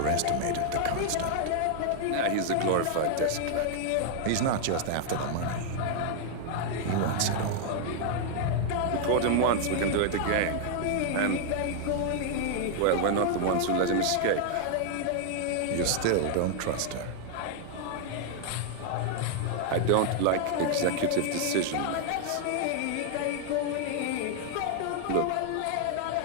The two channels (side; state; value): both; different; correlation 0.00